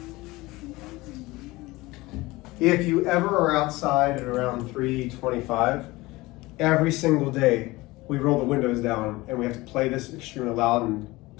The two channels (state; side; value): quieter; right; 20.7 dB